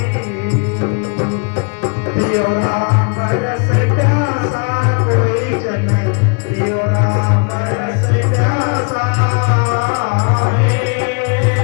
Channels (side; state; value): right; quieter; 35.1 dB